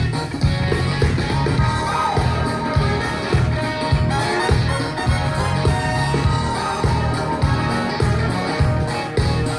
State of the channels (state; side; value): identical; both; correlation 1.00